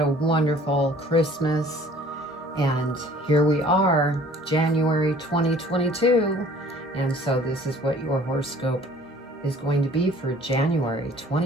wonderful Christmas. And here we are, January 2022. And so this is what your horoscope is going to be for January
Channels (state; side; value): normal; both; correlation 0.53